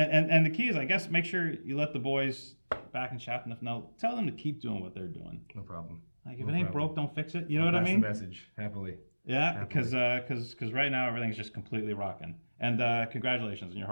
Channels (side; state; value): both; inverted; correlation -1.00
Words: the key is, I guess, make sure you let the boys back in Chateauneuf know. Tell them to keep doing what they're doing. No problem. Like if it ain't broke, don't fix it. You know what I mean? That's the message. Happily. Yeah, because right now everything's just completely rocking. And congratulations on your